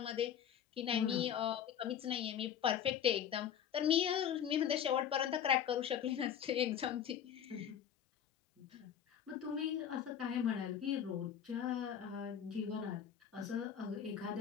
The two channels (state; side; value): quieter; right; 9.0 dB